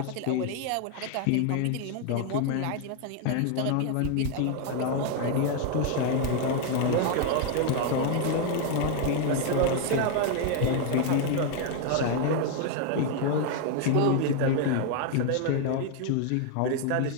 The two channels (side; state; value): both; different; correlation 0.01